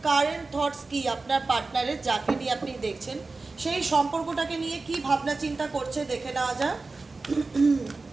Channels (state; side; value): quieter; left; 3.7 dB